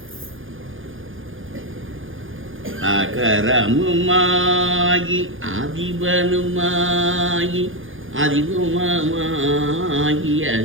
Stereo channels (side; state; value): left; late; 0.58 ms